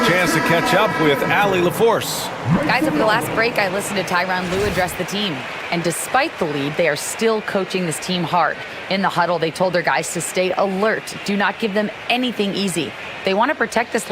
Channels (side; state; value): both; identical; correlation 1.00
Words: chance to catch up with Allie LaForce. Guys, over the last break, I listened to Tyronn Lue address the team. And despite the lead, they are still coaching this team hard. In the huddle, they told their guys to stay alert. Do not give them anything easy. They want to protect this